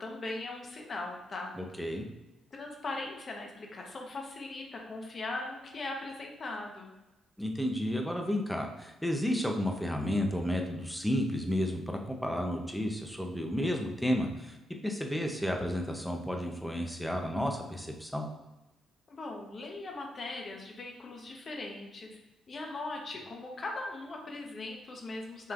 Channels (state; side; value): normal; both; correlation 0.85